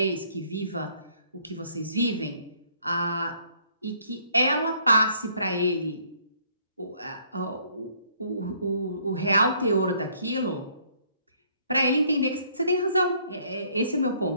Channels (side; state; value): both; inverted; correlation -0.64